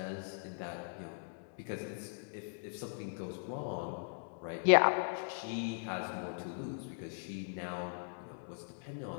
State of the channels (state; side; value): silent; right; digital silence